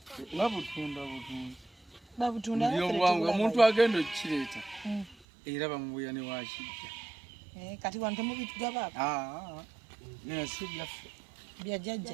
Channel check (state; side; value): drops out; left; at 5.2 s